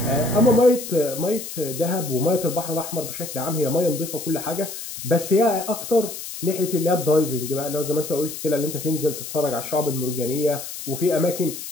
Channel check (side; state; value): left; noise; hiss, 9 dB below the sound